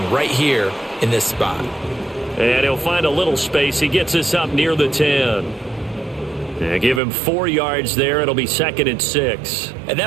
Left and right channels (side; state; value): left; drops out; at 7.0 s